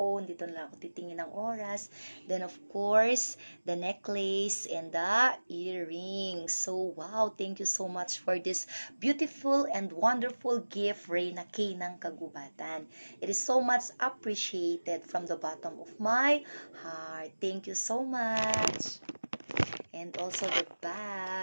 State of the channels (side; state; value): both; inverted; correlation -1.00